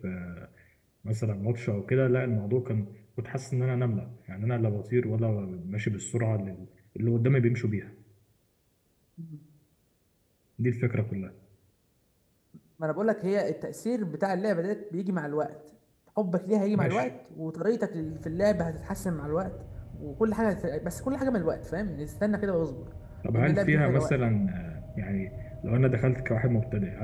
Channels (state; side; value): identical; both; correlation 1.00